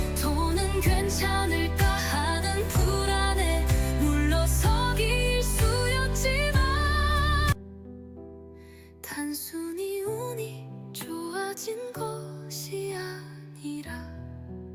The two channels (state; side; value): identical; both; correlation 1.00